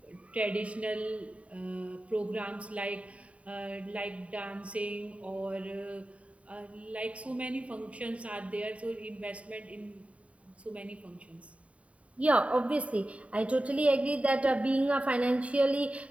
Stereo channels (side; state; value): left; late; 0.065 ms